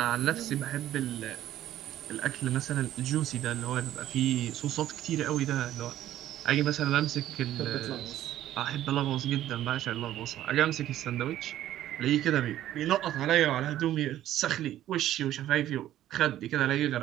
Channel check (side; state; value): left; quieter; 12.9 dB